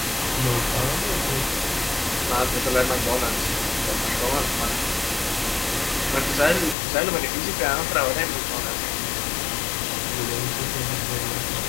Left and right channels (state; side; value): drops out; right; at 6.8 s